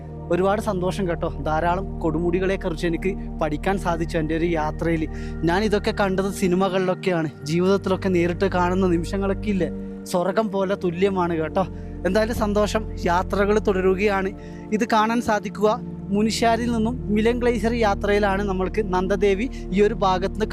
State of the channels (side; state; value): both; identical; correlation 1.00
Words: ഒരുപാട് സന്തോഷം കേട്ടോ. ധാരാളം കൊടുമുടികളെക്കുറിച്ച് എനിക്ക് പഠിക്കാൻ സാധിച്ചു എൻ്റെ ഒരു യാത്രയിൽ. ഞാൻ ഇതൊക്കെ കണ്ടത് സിനിമകളിലൊക്കെയാണ്. ജീവിതത്തിലൊക്കെ നേരിട്ട് കാണുന്ന നിമിഷങ്ങളൊക്കെ ഇല്ലേ, സ്വർഗം പോലെ തുല്യമാണ് കേട്ടോ. എന്തായാലും സന്തോഷം. യാത്രകൾ തുടരുകയാണ്. ഇത് കാണാൻ സാധിക്കുക മുനിശ്ശാരിൽ നിന്നും മിലൻ ഗ്ലേസിയർ യാത്രയിലാണ് നമ്മൾക്ക് നന്ദദേവി ഈ ഒരു ഭാഗത്ത് നിന്ന്